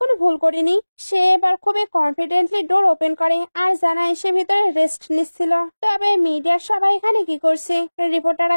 কোনো ভুল করিনি। সে এবার খুবই কনফিডেন্টলি ডোর ওপেন করে আর জানায় সে ভিতরে রেস্ট নিচ্ছিল। তবে মিডিয়ার সবাই এখানে কি করছে? রিপোর্টাররা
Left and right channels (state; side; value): inverted; both; correlation -1.00